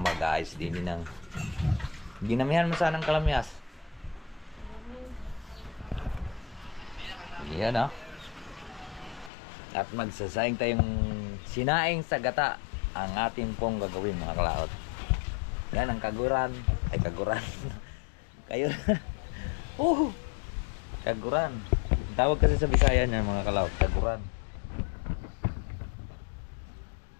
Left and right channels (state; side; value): drops out; right; at 9.3 s